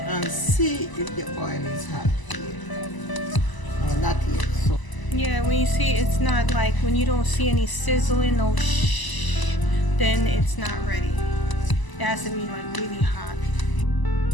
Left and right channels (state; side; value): late; right; 1.0 ms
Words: see if the oil is hot here. No, not yet. So Yeah, when you see it's not like, when you don't see any sizzling, no shh, then it's not ready. It has to be like really hot.